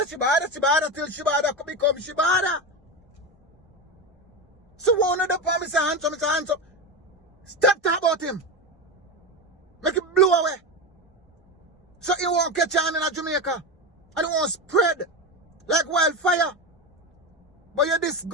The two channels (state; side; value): normal; both; correlation 0.18